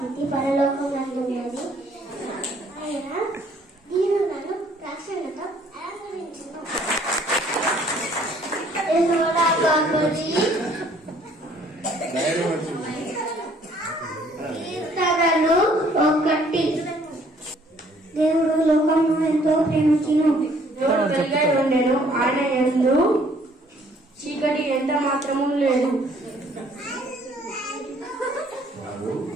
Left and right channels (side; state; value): both; normal; correlation 0.61